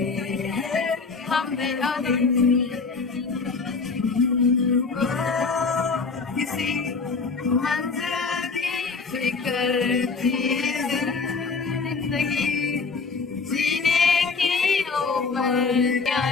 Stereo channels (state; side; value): quieter; right; 4.6 dB